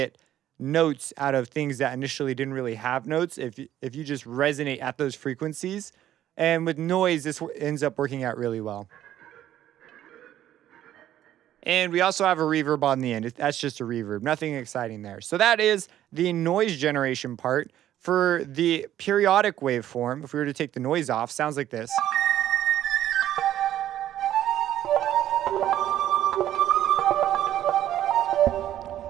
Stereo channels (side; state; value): left; quieter; 12.1 dB